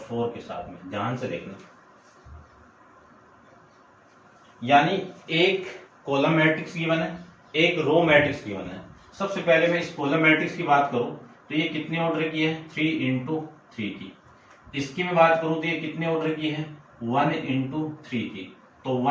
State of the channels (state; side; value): identical; both; correlation 1.00